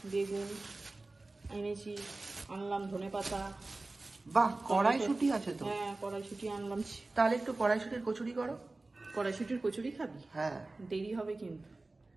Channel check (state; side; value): quieter; left; 3.2 dB